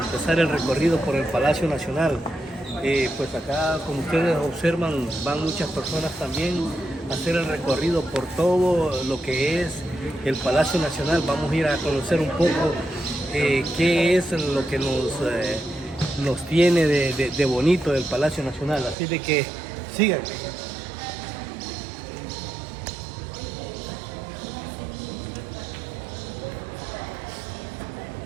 el recorrido por el Palacio Nacional. Pues acá, como ustedes observan, van muchas personas también a hacer el recorrido por todo lo que es el Palacio Nacional. Vamos a ir a conocer un poco qué es lo que nos tiene de bonito el Palacio Nacional. Así de que síganme.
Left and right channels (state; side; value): drops out; left; at 18.9 s